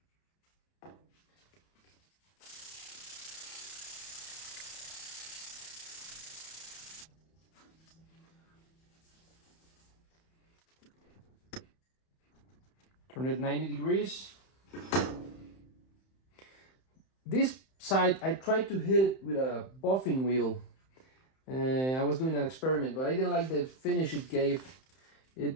Turn it 90 degrees. This side, I tried to hit it with a buffing wheel. I was doing an experiment, but I didn't like the finish it gave.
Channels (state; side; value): late; right; 31 ms